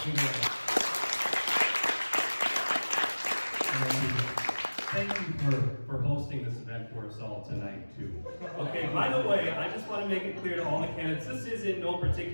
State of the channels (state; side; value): inverted; both; correlation -1.00